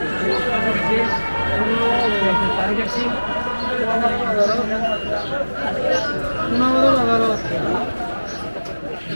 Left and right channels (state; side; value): inverted; both; correlation -1.00